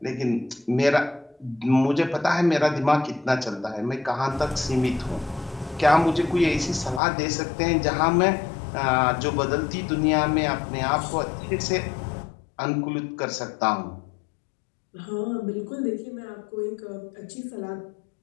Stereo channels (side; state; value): right; drops out; at 7.0 s